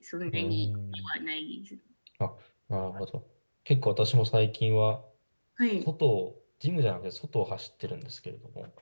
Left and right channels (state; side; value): inverted; both; correlation -1.00